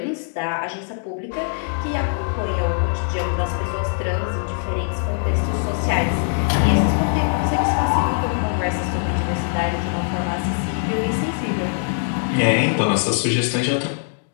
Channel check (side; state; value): right; silent; 64 dB below the other